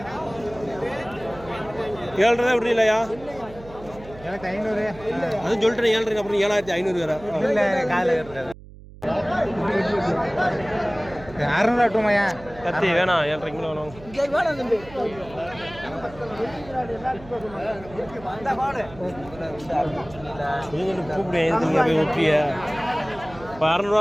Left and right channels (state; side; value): noise; right; hum, 18 dB below the sound